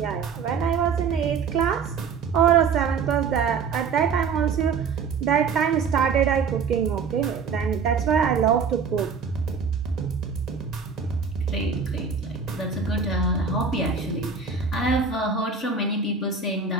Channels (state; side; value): quieter; left; 5.7 dB